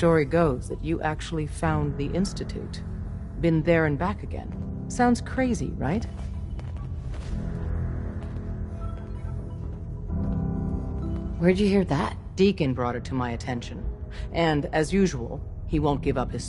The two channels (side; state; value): both; identical; correlation 1.00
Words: goes that you actually found the Institute. Been there and back again. Sounds crazy, right? Where'd you hear that? Deacon brought it to my attention. And, as usual, he won't give up his